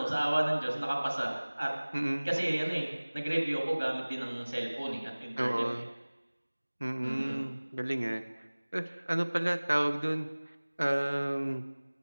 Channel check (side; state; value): both; inverted; correlation -1.00